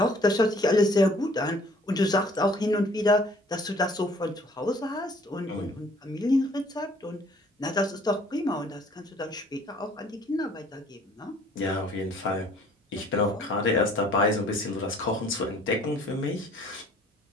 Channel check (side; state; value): both; normal; correlation 0.56